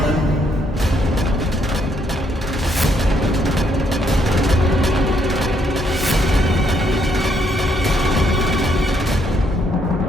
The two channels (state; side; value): normal; both; correlation 0.72